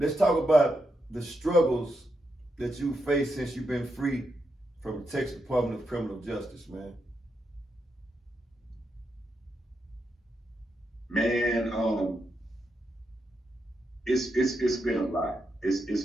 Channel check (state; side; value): normal; both; correlation 0.83